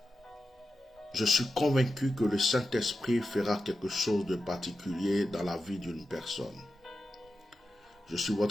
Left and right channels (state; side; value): normal; both; correlation 0.90